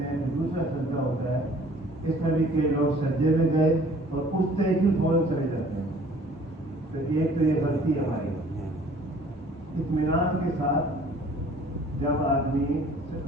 ہیں، دوسرا سجدہ ہوتا ہے۔ اس طرح بھی کئی لوگ سجدے میں گئے اور اٹھتے ہی فوراً چلے جاتے ہیں۔ تو ایک تو یہ غلطی ہماری، اطمینان کے ساتھ جب آدمی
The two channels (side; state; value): both; normal; correlation 0.53